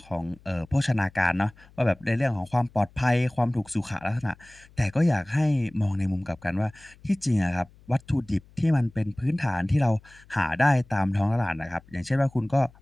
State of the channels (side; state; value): left; noise; hum, 26 dB below the sound